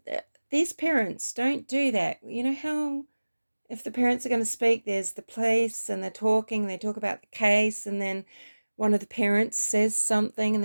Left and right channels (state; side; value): inverted; both; correlation -1.00